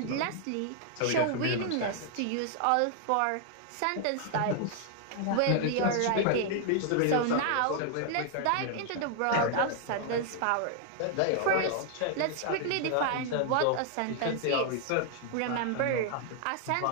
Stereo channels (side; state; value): both; different; correlation 0.00